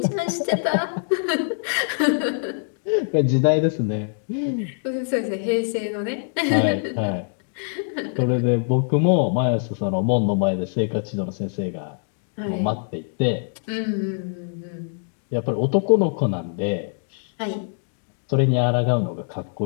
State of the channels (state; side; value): silent; right; digital silence